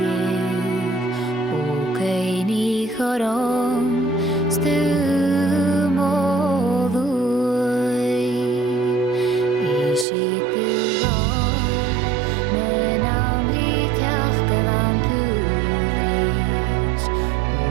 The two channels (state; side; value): drops out; left; at 10.1 s